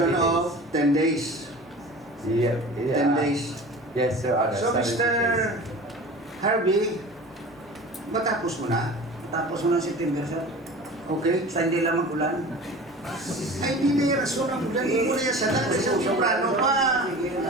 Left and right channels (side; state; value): both; normal; correlation 0.38